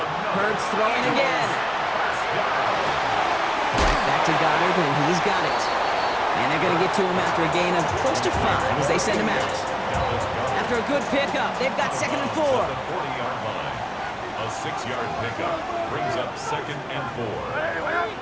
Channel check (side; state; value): both; identical; correlation 1.00